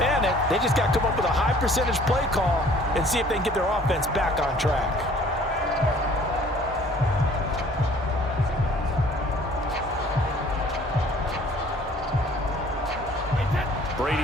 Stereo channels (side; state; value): both; normal; correlation 0.54